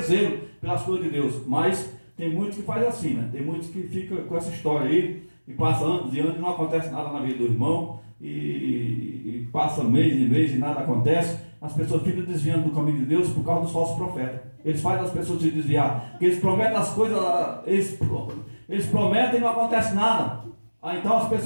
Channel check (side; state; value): both; inverted; correlation -1.00